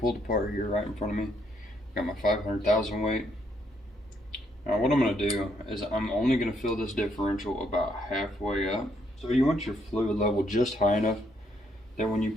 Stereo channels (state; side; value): normal; both; correlation 0.73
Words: apart here right in front of me. Got my 500,000 weight. Now what I'm going to do is I'm only going to fill this differential about halfway up. So you want your fluid level just high enough that when you